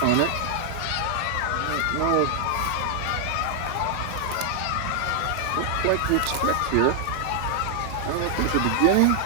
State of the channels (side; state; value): both; different; correlation 0.00